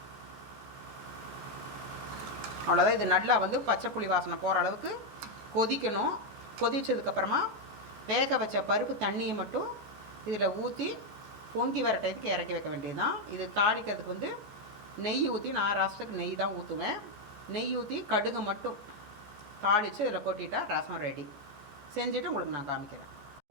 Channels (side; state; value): left; late; 14 ms